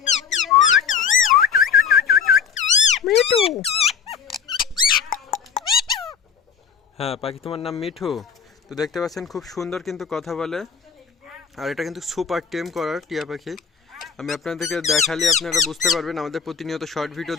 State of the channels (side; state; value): right; quieter; 6.8 dB